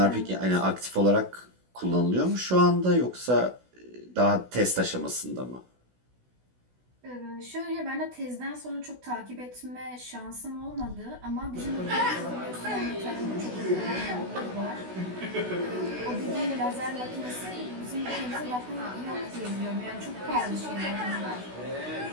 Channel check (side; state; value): left; late; 16 ms